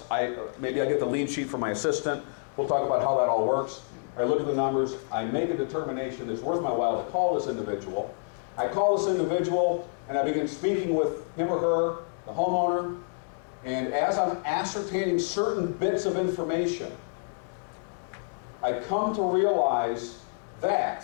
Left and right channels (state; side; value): silent; right; digital silence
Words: maybe I get the lead sheet from my assistant, we'll talk about how that all works. I look at the numbers, I make a determination it's worth my while to call this individual. I call this individual and I begin speaking with him or her, the homeowner, and as I'm ascertaining certain bits of information, I come to realize